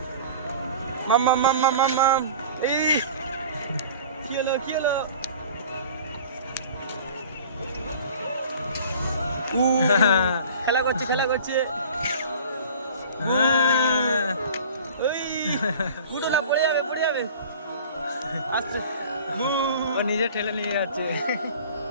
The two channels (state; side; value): inverted; both; correlation -0.44